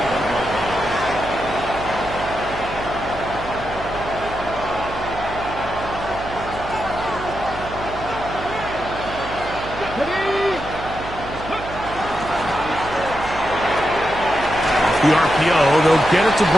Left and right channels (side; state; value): right; noise; hum, 11 dB below the sound